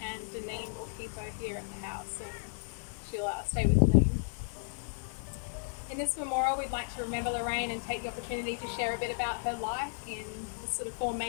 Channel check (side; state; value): right; silent; 55 dB below the other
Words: and Deneen will keep her here at the house, and she'll stay with Deneen. In this memorial, we'd like to remember Lorraine and take the opportunity to share a bit about her life in the sort of four